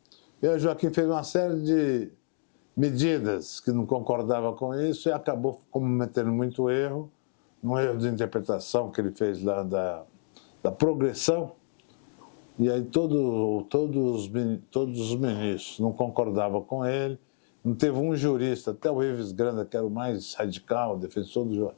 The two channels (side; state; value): right; silent; digital silence